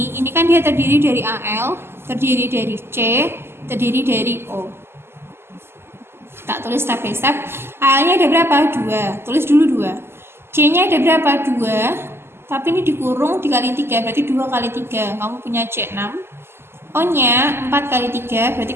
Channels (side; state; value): left; late; 0.12 ms